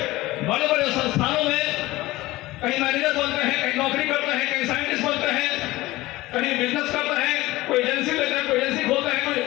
बड़े बड़े संस्थानों में कहीं मैनेजर बनते हैं, कहीं नौकरी करते हैं, कहीं साइंटिस्ट बनते हैं, कहीं बिजनेस करते हैं, कोई एजेंसी लेते हैं, कोई एजेंसी खोलते हैं, कोई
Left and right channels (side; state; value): right; quieter; 18.6 dB